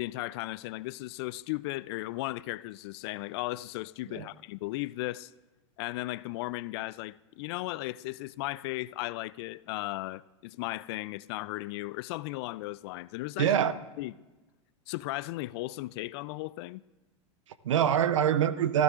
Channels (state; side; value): normal; both; correlation -0.02